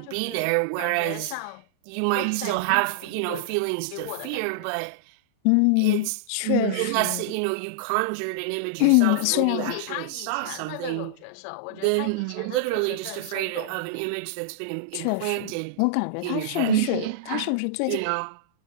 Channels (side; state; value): both; different; correlation -0.02